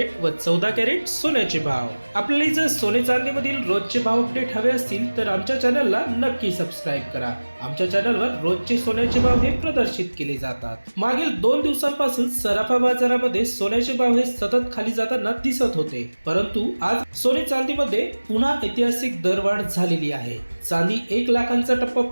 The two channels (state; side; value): inverted; both; correlation -1.00